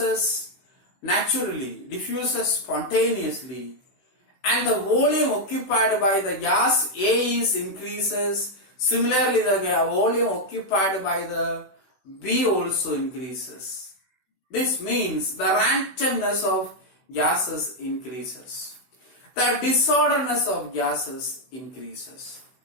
naturally, diffuses spontaneously, and the volume occupied by the gas A is increases. Similarly, the volume occupied by the B also increases. This means the randomness of gases increases. The disorderness of gases increases.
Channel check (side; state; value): right; late; 16 ms